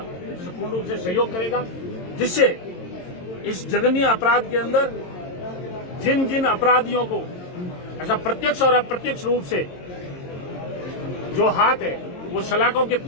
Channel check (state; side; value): late; right; 22 ms